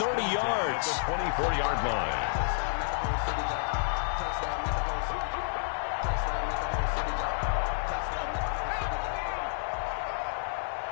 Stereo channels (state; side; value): silent; right; digital silence